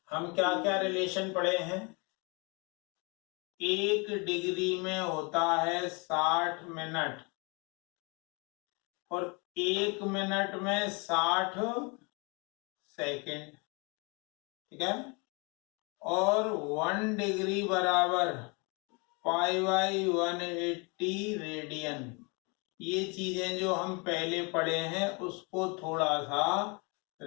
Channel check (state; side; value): quieter; right; 30.9 dB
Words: हम क्या क्या रिलेशन पढ़े हैं, 1 डिग्री में होता है 60 मिनट और 1 मिनट में 60 सेकंड, ठीक है, और 1 डिग्री बराबर π/180 रेडियन। ये चीजें जो हम पहले पढ़े हैं उसको थोड़ा सा